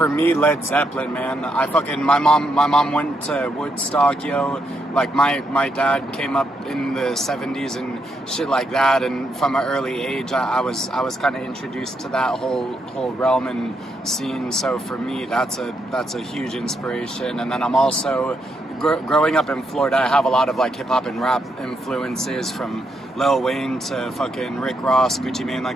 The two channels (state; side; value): normal; both; correlation 0.78